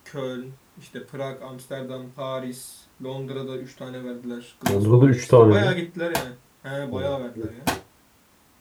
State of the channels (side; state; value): both; identical; correlation 1.00